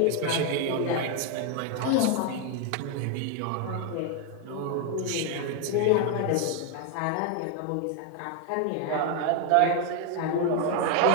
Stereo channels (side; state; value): both; different; correlation 0.01